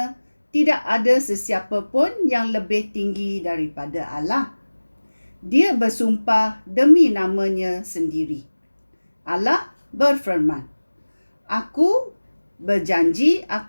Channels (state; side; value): inverted; both; correlation -1.00